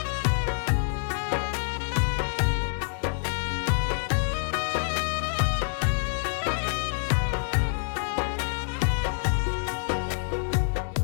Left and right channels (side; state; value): right; silent; digital silence